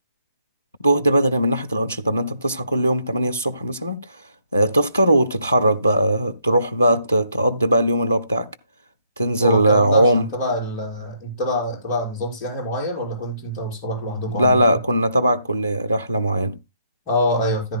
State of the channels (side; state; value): both; inverted; correlation -0.73